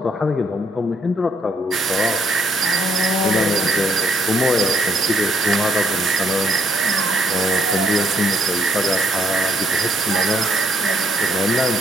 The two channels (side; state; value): both; normal; correlation 0.70